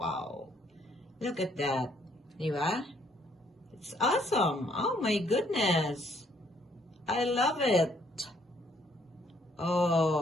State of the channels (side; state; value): both; normal; correlation 0.67